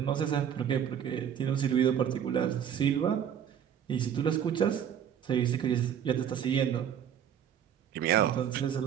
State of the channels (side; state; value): left; quieter; 9.0 dB